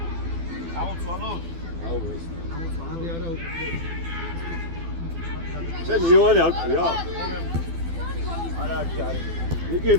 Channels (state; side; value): late; left; 12 ms